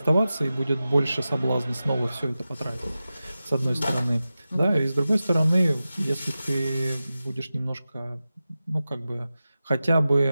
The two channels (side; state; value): both; inverted; correlation -0.94